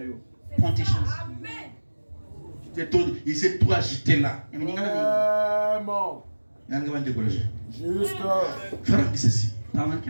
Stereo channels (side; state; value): both; inverted; correlation -1.00